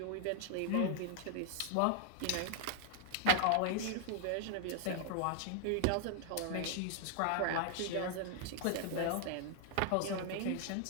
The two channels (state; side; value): different; both; correlation 0.00